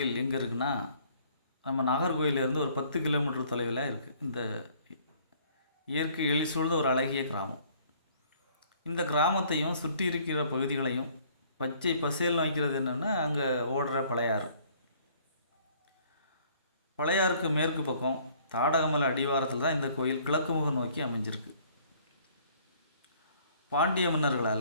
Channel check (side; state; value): both; inverted; correlation -0.59